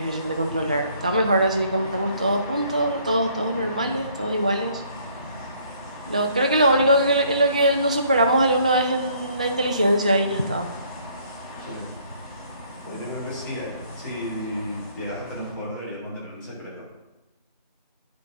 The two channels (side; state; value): both; inverted; correlation -0.62